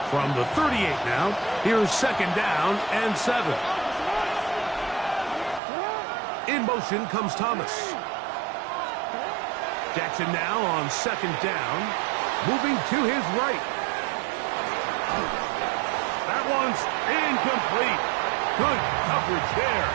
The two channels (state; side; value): drops out; left; at 5.6 s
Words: From the 38 now, here's 2nd down and 7. In motion comes Thomas. Jackson now on 2nd down, moving to his right. That one's incomplete. Good coverage there.